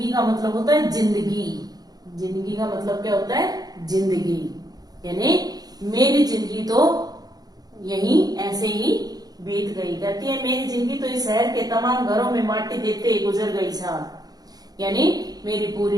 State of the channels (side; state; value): left; late; 0.19 ms